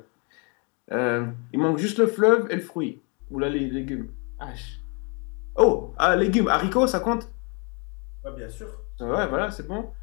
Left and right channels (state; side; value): quieter; right; 34.1 dB